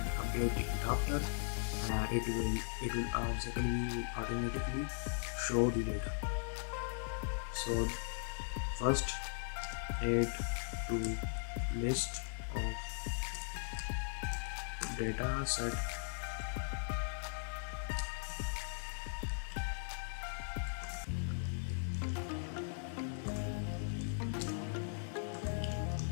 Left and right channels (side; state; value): right; silent; digital silence